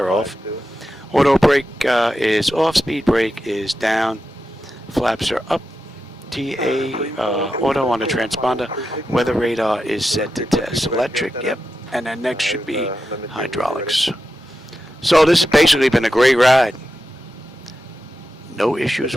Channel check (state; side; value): normal; both; correlation 0.89